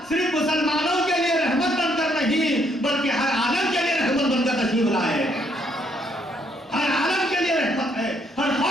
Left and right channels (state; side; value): normal; both; correlation 0.71